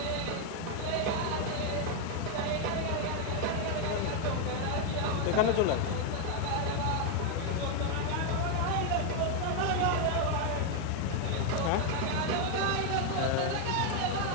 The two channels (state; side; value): different; both; correlation 0.01